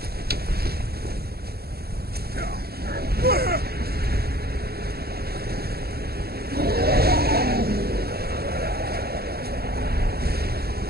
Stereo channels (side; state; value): left; late; 0.46 ms